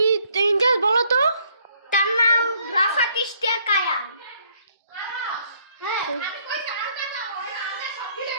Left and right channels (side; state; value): both; inverted; correlation -0.66